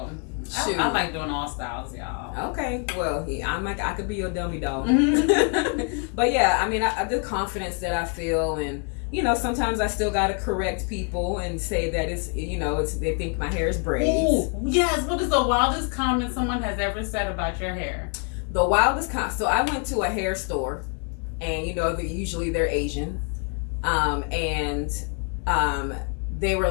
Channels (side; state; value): right; quieter; 38.5 dB